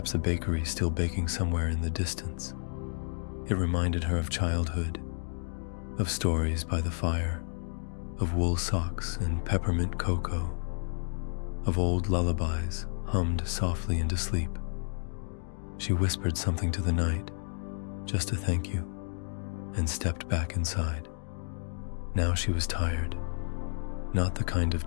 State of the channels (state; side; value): silent; right; digital silence